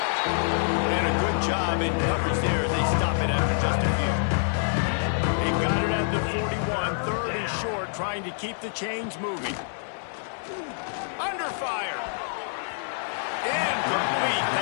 And a good job in coverage there. They stop it after just a few. They got it at the 41. 3rd and short, trying to keep the chains moving. Under fire. Incomplete,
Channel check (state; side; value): silent; right; digital silence